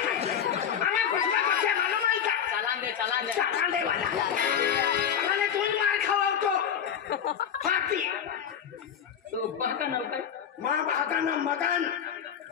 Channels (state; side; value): quieter; right; 8.3 dB